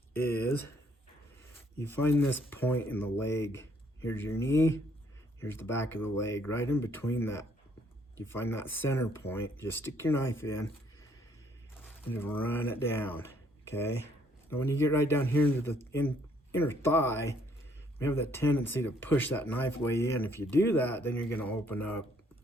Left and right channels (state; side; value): normal; both; correlation 0.66